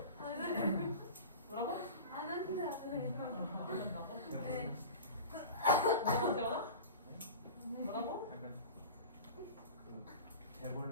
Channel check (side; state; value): both; inverted; correlation -0.33